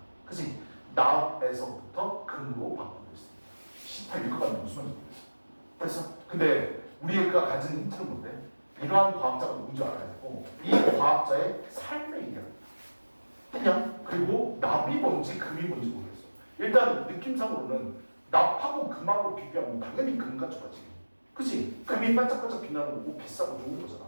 그치? 납에서부터 금으로 바꾸고 있습니다. 18 읽어가면 무슨 말인지 모르겠어. 됐어? 근데 우리가 가진 힌트는 뭔데? 이러한 과학자가 누군지 알아야 되고 이 과학자의 삶을 얘기합니다. 그냥 그리고 납이 뭔지 금이 뭔지 모르겠어. 일단 느낌상으로는 납하고 금하고 비교하면 당연히 금 가져가지. 그치? 금이 반짝반짝 빛나는 거고 비싸고 좋은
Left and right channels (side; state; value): both; inverted; correlation -1.00